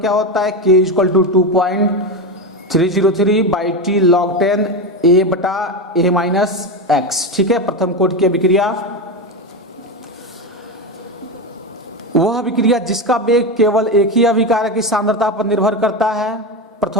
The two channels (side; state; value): both; normal; correlation 0.16